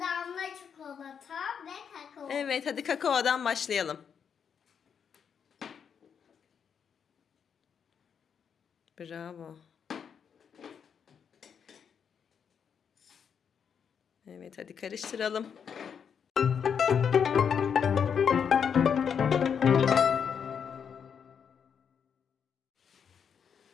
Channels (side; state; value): right; quieter; 7.2 dB